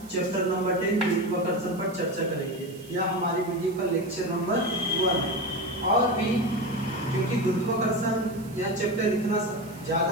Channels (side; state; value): right; noise; hiss, 22 dB below the sound